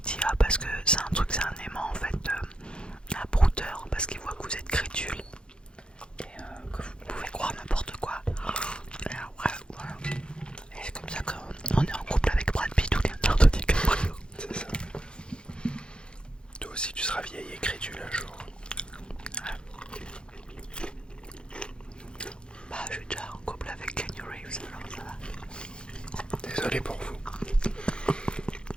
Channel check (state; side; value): late; right; 0.052 ms